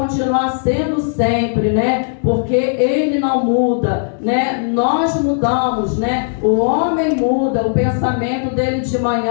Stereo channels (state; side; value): silent; right; digital silence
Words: sendo sempre, né? Porque ele não muda, né? Nós mudamos, né? O homem muda, o pensamento dele de